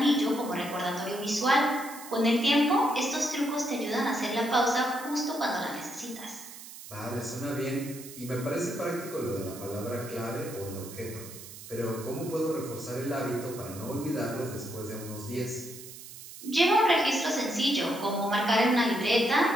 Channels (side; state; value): right; noise; hiss, 14 dB below the sound